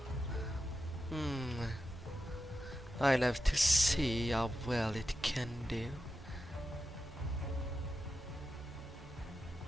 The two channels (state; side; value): normal; both; correlation 0.90